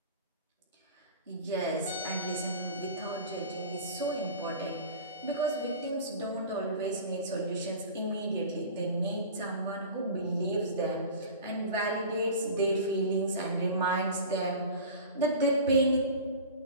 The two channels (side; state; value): both; inverted; correlation -0.37